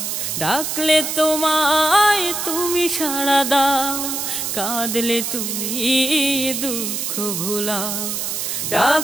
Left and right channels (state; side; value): noise; right; hiss, 2 dB below the sound